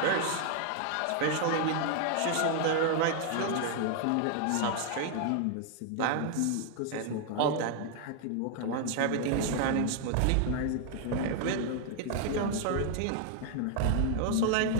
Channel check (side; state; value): both; different; correlation 0.00